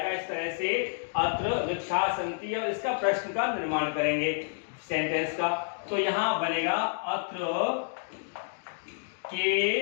इस तरह से अत्र वृक्षाः सन्ति, और इसका प्रश्न का निर्माण करेंगे सेंटेंस का। तो यहाँ बनेगा अत्र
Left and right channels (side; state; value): right; silent; digital silence